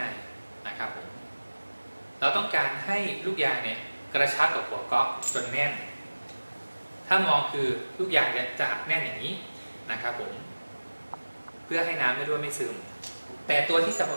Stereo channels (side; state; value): both; inverted; correlation -1.00